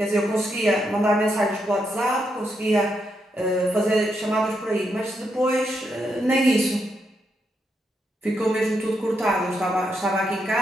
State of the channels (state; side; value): normal; both; correlation 0.81